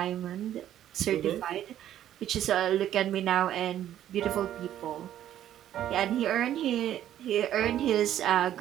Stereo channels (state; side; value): quieter; left; 11.6 dB